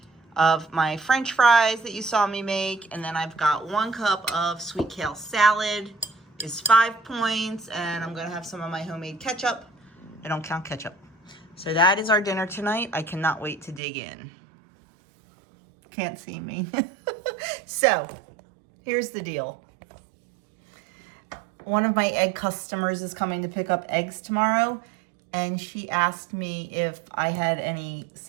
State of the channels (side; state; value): left; drops out; at 13.8 s